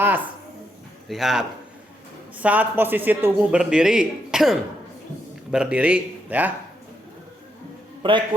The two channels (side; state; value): both; normal; correlation 0.79